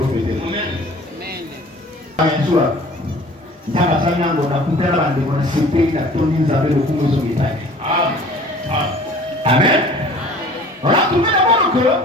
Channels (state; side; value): normal; both; correlation 0.47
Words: Amen. Il y a la famille qui a coupé la bande de mon CP, qui a tourné les affaires au Congo sur les tailles. Amen. On a trouvé d'abord que